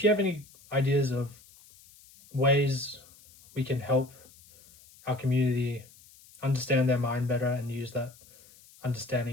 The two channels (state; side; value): noise; left; hiss, 25 dB below the sound